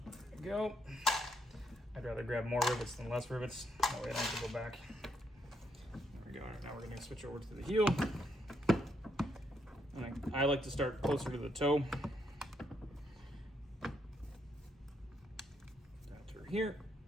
we go. I'd rather grab more rivets than less rivets. That way I don't have to go back. There we go. Now we're going to switch over to the heel. I like to start closer to the toe. Down through here.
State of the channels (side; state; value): both; normal; correlation 0.76